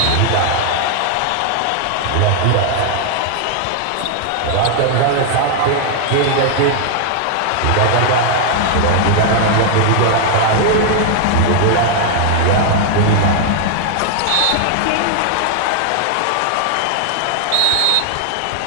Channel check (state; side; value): different; both; correlation 0.00